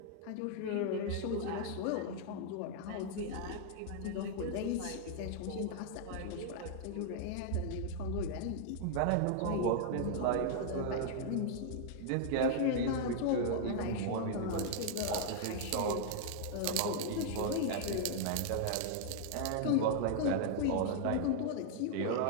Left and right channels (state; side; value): different; both; correlation -0.01